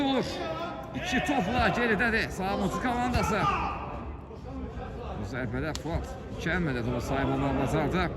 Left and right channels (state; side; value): identical; both; correlation 1.00